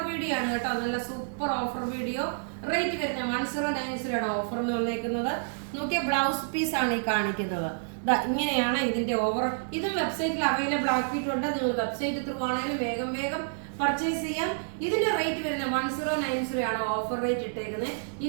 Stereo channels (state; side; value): silent; left; digital silence